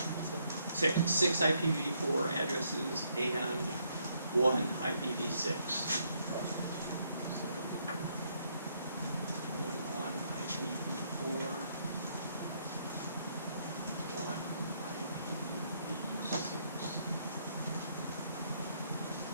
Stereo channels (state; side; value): inverted; both; correlation -0.72